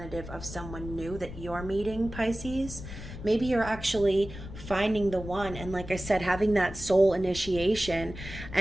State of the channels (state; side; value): noise; left; rumble, 11 dB below the sound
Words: of someone new that you're meeting, Pisces. Maybe you're actually finding the one, and like I said, having that soul initiation